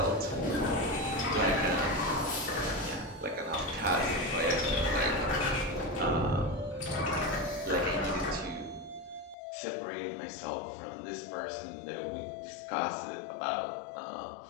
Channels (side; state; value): right; drops out; at 9.3 s